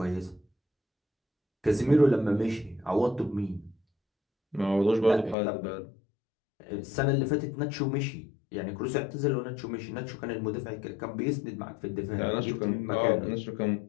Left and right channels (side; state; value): right; drops out; at 5.4 s